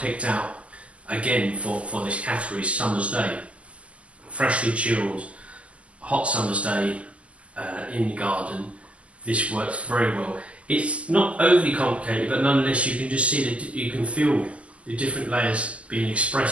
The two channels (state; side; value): late; left; 0.061 ms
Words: out again for this category, summer's day. Freshly chilled, hot summer's day in the garden. This works very well. It's not overly complicated, but nonetheless you can just see that you can feel the different layers being